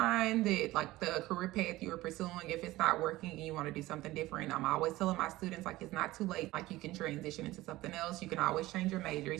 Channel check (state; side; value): quieter; left; 17.8 dB